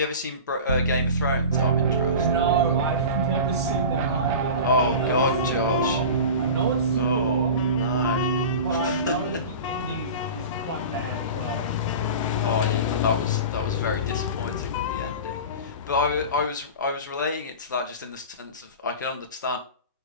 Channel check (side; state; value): both; inverted; correlation -0.33